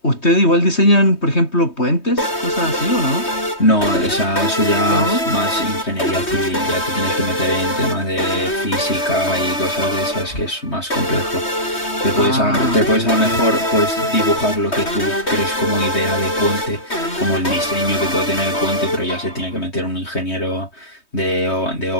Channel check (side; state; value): right; late; 3.2 ms